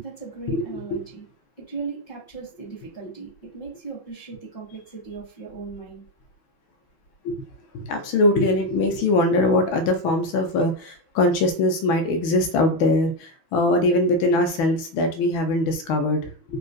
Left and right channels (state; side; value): late; right; 6.2 ms